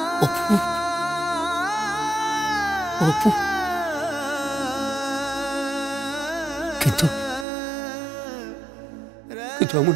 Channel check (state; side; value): drops out; left; at 7.5 s